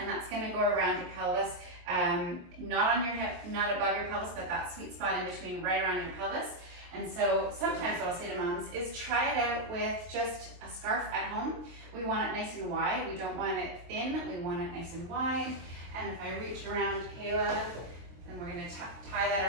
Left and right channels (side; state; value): left; late; 23 ms